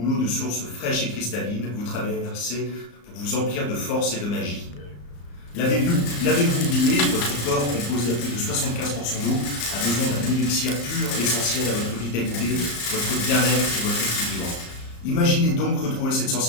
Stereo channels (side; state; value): right; late; 34 ms